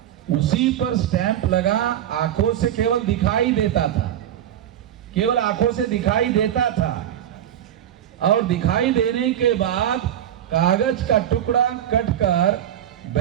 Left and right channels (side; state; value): left; quieter; 10.7 dB